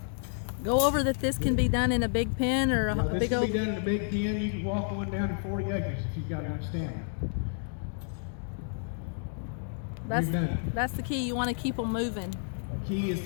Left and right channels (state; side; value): silent; right; digital silence